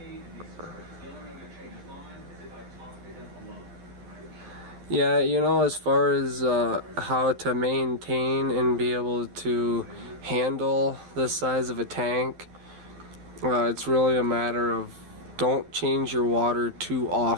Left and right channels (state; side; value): late; left; 12 ms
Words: Yeah, you know, as far as how to maintain and be able to handle this size of a tank, it's really a matter of don't change your water too